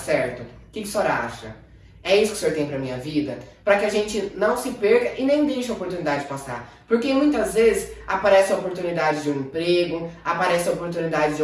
O que o senhor acha? É isso que o senhor tem para minha vida? Para que a gente não se perca e nem deixe a oportunidade passar. Porque muitas vezes aparece a oportunidade de um emprego, aparece a oportunidade de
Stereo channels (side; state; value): both; identical; correlation 1.00